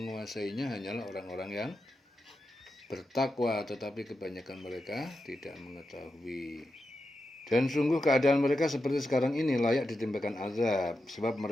hanyalah orang-orang yang bertakwa, tetapi kebanyakan mereka tidak mengetahui. Dan sungguh keadaan mereka seperti sekarang ini layak ditimpakan azab, sebab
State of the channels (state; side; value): normal; both; correlation 0.89